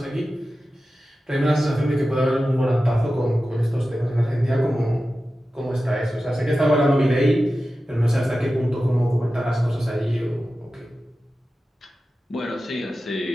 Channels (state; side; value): normal; both; correlation 0.94